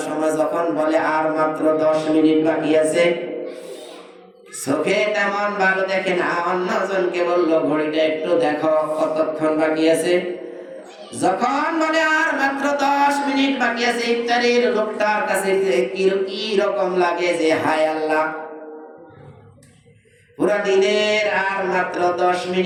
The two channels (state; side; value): identical; both; correlation 1.00